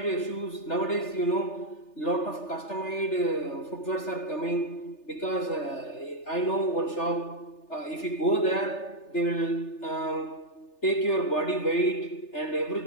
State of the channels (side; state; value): right; late; 3.3 ms